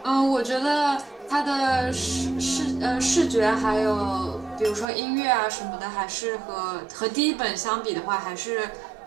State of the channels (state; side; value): drops out; left; at 4.9 s